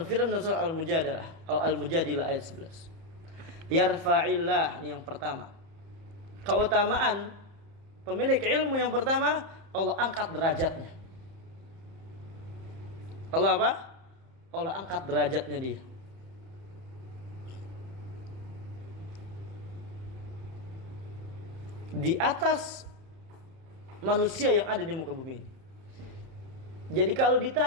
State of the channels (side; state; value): left; late; 30 ms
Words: dalam surah Al-Mujadilah atau Al-Mujadilah ayat 11. Yarfa'illah, ini yang pertama. Keutamaan pemilik ilmu yang pertama, Allah angkat derajatnya. Allah apa? Allah angkat derajatnya dia. Di atas manusia yang ada di muka bumi ini. Jadi kalau